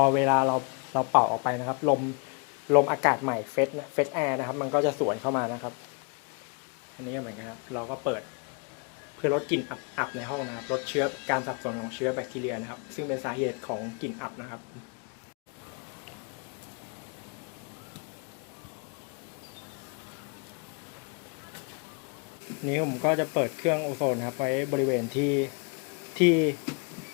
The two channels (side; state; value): right; quieter; 35.8 dB